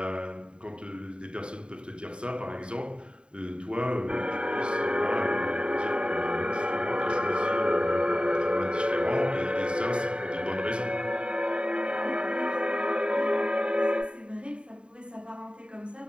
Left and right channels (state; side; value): late; left; 0.052 ms